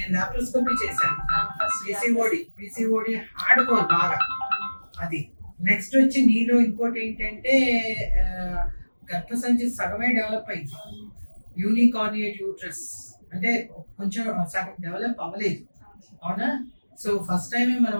లాప్రోస్కోపీ చేశాను. పిసిఓడి హార్డ్ కోర్ బాగా. అది నెక్స్ట్ వచ్చి నీలో ఇంకోటి ఏంటంటే గర్భసంచి సగమే డెవలప్ అయింది. యూనికార్నియేట్ యూట్రస్ అంటే కొంచెం సగం డెవలప్ అవ్వలేదు, అవునా? సో ఫస్ట్ టైమే మనం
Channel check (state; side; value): inverted; both; correlation -1.00